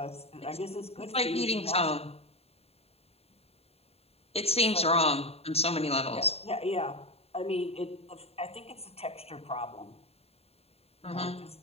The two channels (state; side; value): late; right; 0.29 ms